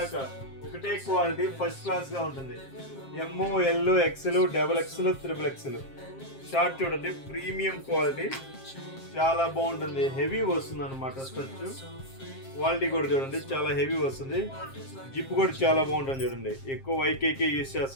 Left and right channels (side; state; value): right; late; 7.5 ms